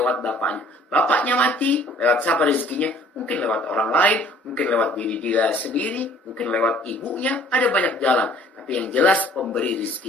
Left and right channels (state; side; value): normal; both; correlation 0.55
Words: bapaknya. Bapaknya mati, lewat siapa rezekinya? Mungkin lewat orang lain, mungkin lewat diri dia sendiri, mungkin lewat ibunya. Ada banyak jalan. Tapi yang jelas pemberi